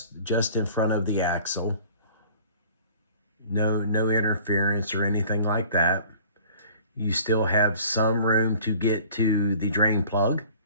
just in front of the axle. No interference or anything like that. You still have some room to get to the drain plug.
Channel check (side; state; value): both; inverted; correlation -0.48